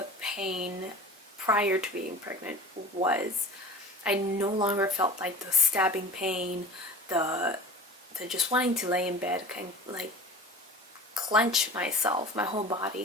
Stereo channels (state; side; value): normal; both; correlation 0.39